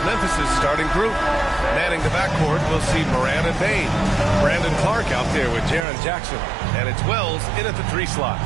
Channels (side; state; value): left; drops out; at 5.9 s